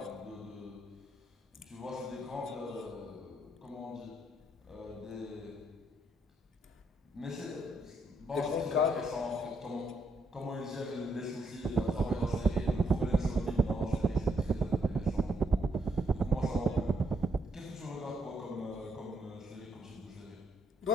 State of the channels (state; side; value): normal; both; correlation 0.75